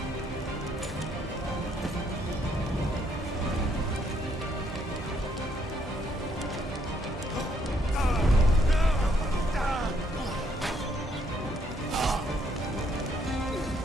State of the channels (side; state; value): both; normal; correlation 0.71